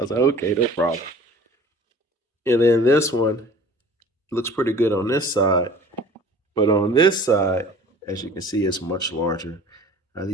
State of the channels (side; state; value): both; normal; correlation 0.46